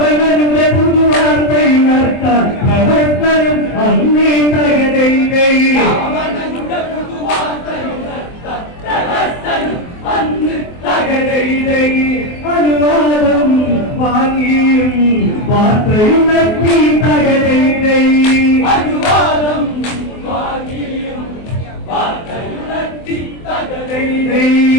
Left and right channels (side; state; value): right; late; 24 ms